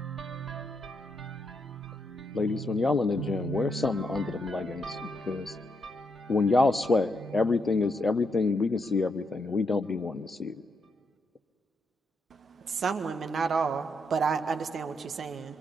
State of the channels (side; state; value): both; normal; correlation 0.79